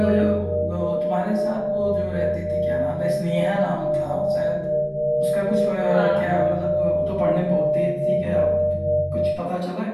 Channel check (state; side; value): identical; both; correlation 1.00